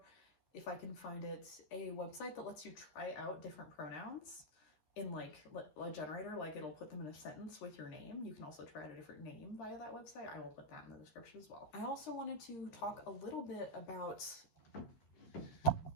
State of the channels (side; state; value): right; late; 13 ms